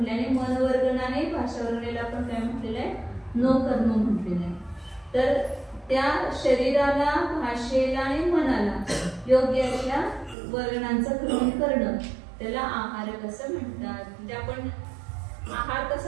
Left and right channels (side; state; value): left; drops out; at 10.4 s